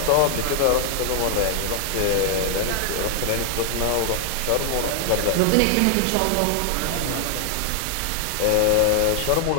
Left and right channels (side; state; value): both; different; correlation 0.00